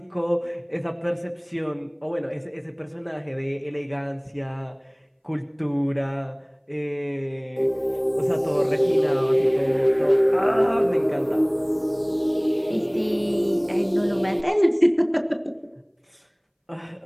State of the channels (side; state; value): both; identical; correlation 1.00